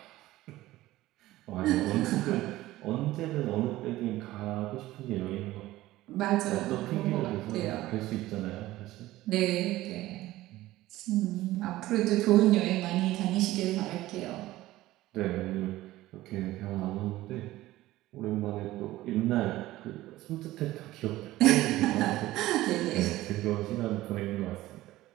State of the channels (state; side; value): quieter; left; 16.5 dB